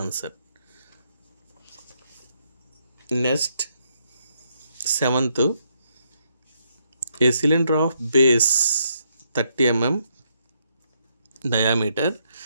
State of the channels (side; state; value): both; inverted; correlation -0.76